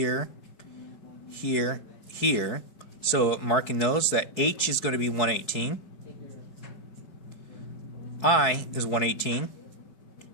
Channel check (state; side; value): late; right; 4.7 ms